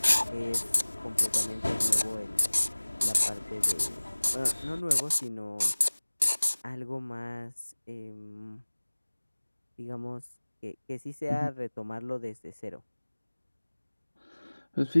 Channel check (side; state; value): both; inverted; correlation -1.00